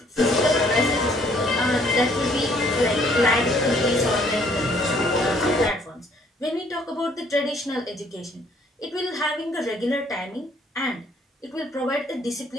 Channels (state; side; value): normal; both; correlation 0.63